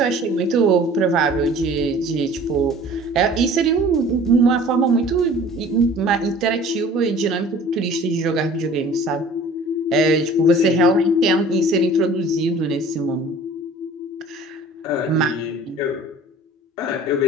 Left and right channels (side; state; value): both; normal; correlation 0.47